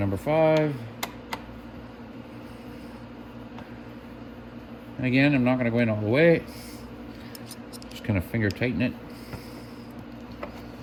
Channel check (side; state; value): both; identical; correlation 1.00